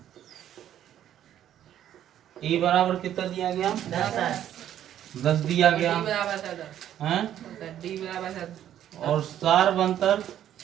ए बराबर कितना दिया गया? 10 दिया गया हैं, और सर्व अंतर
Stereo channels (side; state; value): left; quieter; 11.0 dB